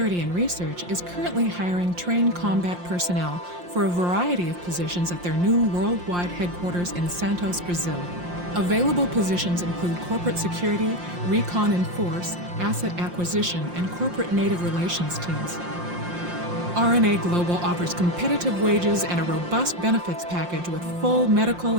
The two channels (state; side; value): late; left; 5.7 ms